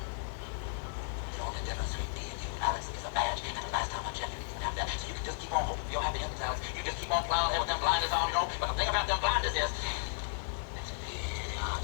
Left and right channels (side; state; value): right; silent; 55 dB below the other